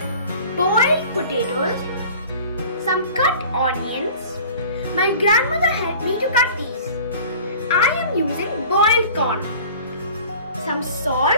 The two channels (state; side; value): inverted; both; correlation -0.44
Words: boiled potatoes, some cut onions. My grandmother helped me to cut these. I am using boiled corn, some